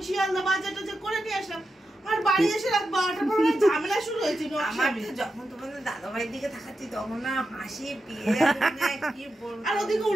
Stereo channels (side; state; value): both; normal; correlation 0.89